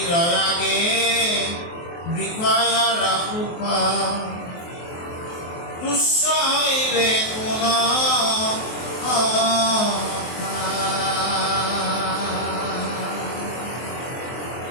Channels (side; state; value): right; late; 23 ms